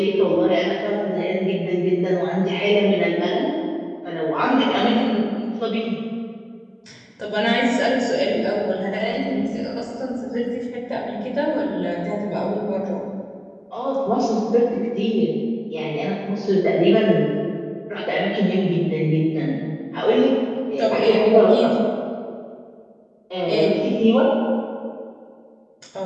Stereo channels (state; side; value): identical; both; correlation 1.00